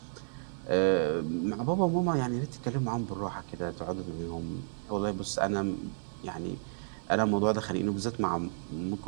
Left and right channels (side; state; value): left; silent; 56 dB below the other